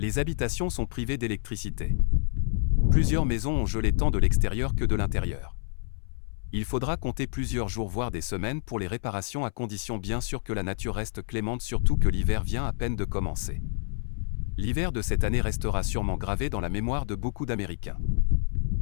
habitations sont privées d'électricité. Plusieurs maisons ont gelé tant de l'extérieur que de l'intérieur. Il faudra compter plusieurs jours voire des semaines pour les réparations, à condition bien sûr que la nature reste clémente, surtout que l'hiver vient à peine de commencer. L'hiver de cette année restera sûrement gravé dans la mémoire de beaucoup d'Américains.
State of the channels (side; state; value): right; silent; 59 dB below the other